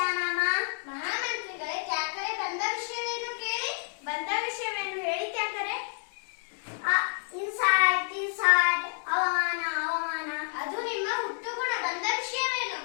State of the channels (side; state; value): right; silent; digital silence